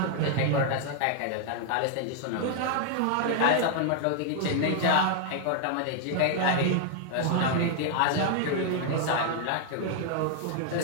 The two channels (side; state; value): both; different; correlation 0.00